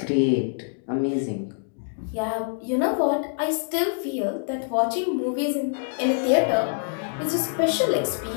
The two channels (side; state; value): right; silent; digital silence